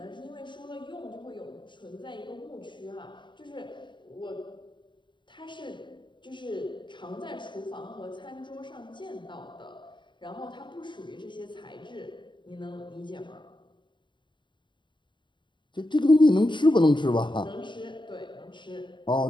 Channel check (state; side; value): late; right; 0.23 ms